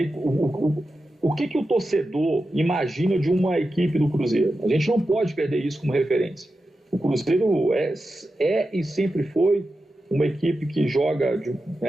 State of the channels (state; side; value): normal; both; correlation 0.91